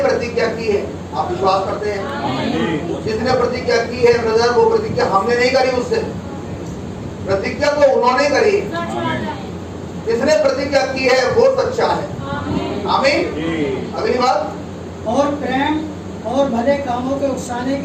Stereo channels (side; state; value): both; identical; correlation 1.00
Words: की है, आप विश्वास करते हैं? जिसने प्रतिज्ञा की है ब्रदर, वो प्रतिज्ञा हमने नहीं करी, उससे प्रतिज्ञा तो उन्होंने करी। जिसने प्रतिज्ञा की है वो सच्चा है, आमीन। अगली बात, और प्रेम और भले कामों के उकसाने